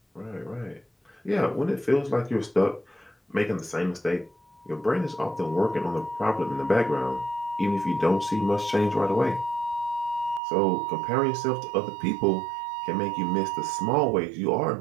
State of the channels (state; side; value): drops out; left; at 10.4 s